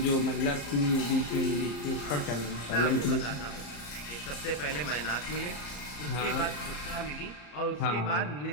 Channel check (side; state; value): right; late; 34 ms